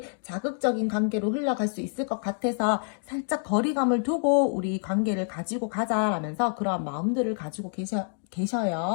자극적인 관계로 흘러갈 수 있을 것 같아서 살짝 거리감을 두고 우리 관계를 가지고 가자라면서 그러한 마음들을 가지고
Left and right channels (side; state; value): right; silent; 60 dB below the other